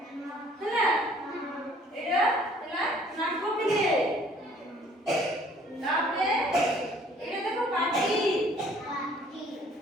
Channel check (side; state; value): both; normal; correlation 0.57